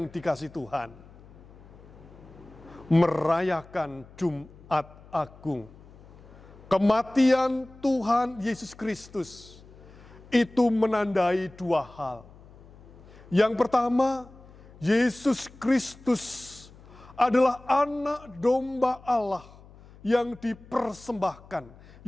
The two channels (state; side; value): noise; left; hum, 22 dB below the sound